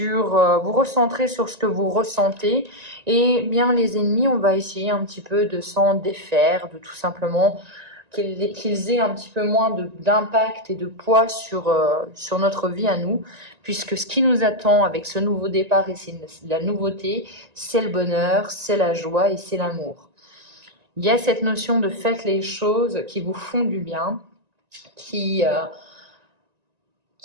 vous recentrer sur ce que vous ressentez. Et bien, les ennemis, on va essayer un petit peu de s'en défaire, de tout simplement qu'ils aient un petit peu moins d'impact et de poids sur notre vie à nous, puisque ce qui nous attend avec ce nouveau départ et c'est la nouveauté, c'est le bonheur, c'est la joie et c'est l'amour. Il y a cette notion de faites les choses qui vous font du bien, qui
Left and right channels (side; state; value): left; late; 1.9 ms